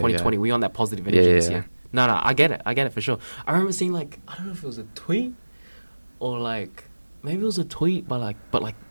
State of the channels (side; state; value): both; inverted; correlation -1.00